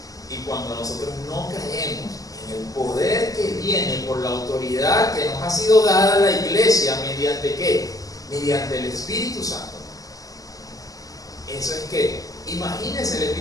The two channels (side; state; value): right; late; 0.17 ms